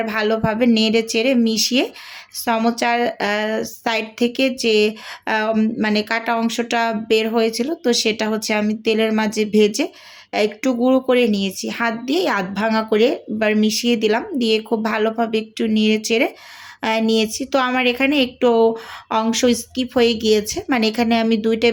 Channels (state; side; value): identical; both; correlation 1.00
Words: ভালোভাবে নেড়ে চেড়ে মিশিয়ে সমোচার সাইড থেকে যে মানে কাটা অংশটা বের হয়েছিল, তো সেটা হচ্ছে আমি তেলের মাঝে ভেজে একটু গুঁড়ো করে নিয়েছি, হাত দিয়ে আধ ভাঙা করে এবার মিশিয়ে দিলাম, দিয়ে খুব ভালোভাবে একটু নেড়ে চেড়ে নিয়েছি। তো আমার এখানে একটু অংশ স্কিপ হয়ে গিয়েছে, মানে এখানে আমি 2